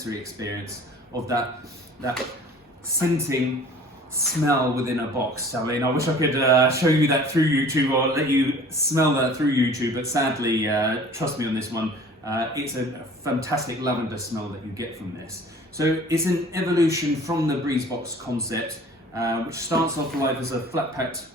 experience of that scenting smell within a box. I mean, I wish I could show you that through YouTube or let you smell that through YouTube, but sadly, trust me on this one, it's a fantastic lavender smell that you get from this. So it's an evolution from the Breezebox concept, which starts off life as a flat packed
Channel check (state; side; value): normal; both; correlation 0.47